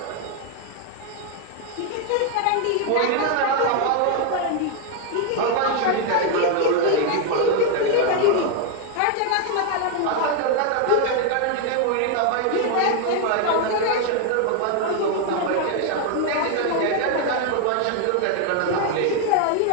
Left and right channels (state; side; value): different; both; correlation 0.01